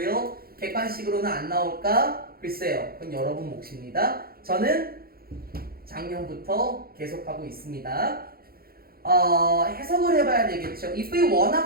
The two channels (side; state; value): left; late; 0.44 ms